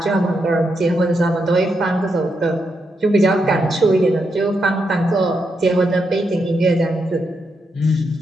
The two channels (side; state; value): both; normal; correlation 0.82